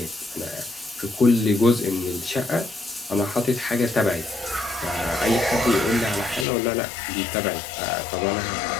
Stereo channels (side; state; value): right; drops out; at 6.5 s